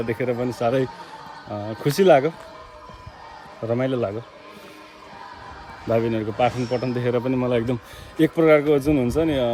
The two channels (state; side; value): identical; both; correlation 1.00